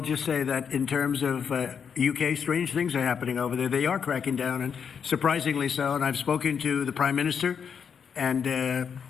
say that in terms of UK, strange things are happening over there. They are cracking down, and surprisingly so. And I've spoken to the Prime Minister, and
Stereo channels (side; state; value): right; quieter; 7.0 dB